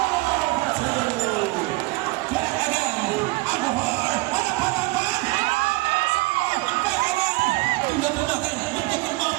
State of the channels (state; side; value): quieter; left; 22.2 dB